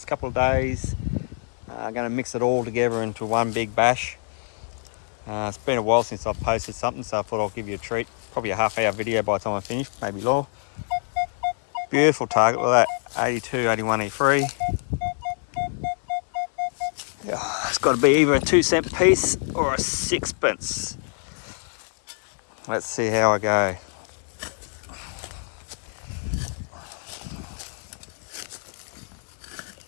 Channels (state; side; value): silent; right; digital silence